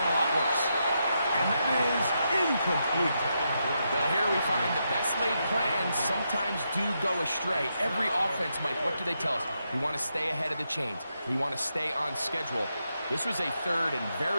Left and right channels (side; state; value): both; inverted; correlation -0.83